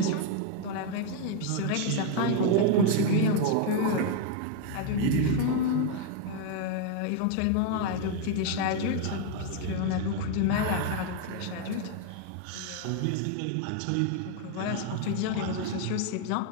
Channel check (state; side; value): different; both; correlation 0.01